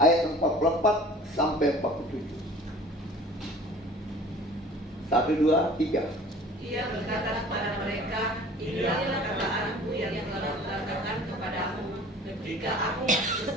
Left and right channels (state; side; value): normal; both; correlation 0.46